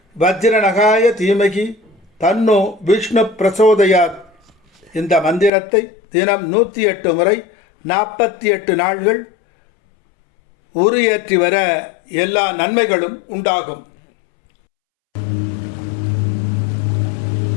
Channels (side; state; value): right; drops out; at 5.5 s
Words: வஜ்ரநகாய தீமகி தன்னோ விஷ்ணு பிரசோதயாத். இந்த மந்திரத்தை தினம் 108 முறை 48 நாள்கள் உரு ஏற்றி வர எல்லா நன்மைகளும் உண்டாகும்.